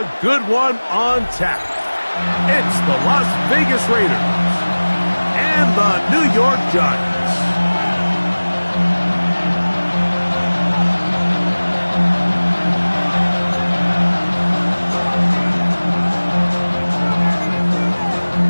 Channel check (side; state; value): both; inverted; correlation -1.00